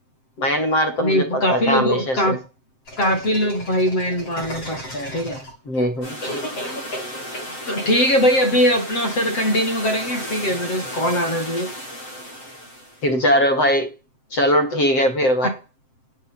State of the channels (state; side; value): late; right; 7.7 ms